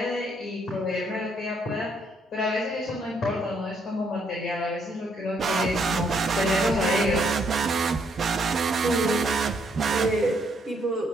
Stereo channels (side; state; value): both; normal; correlation 0.71